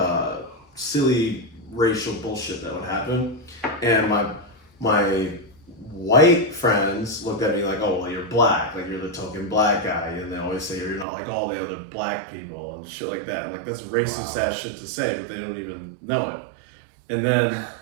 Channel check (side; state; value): left; drops out; at 11.1 s